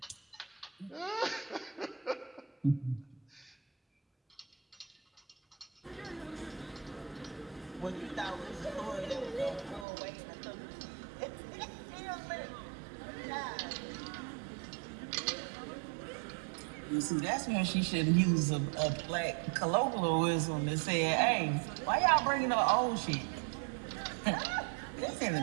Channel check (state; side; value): drops out; left; at 9.9 s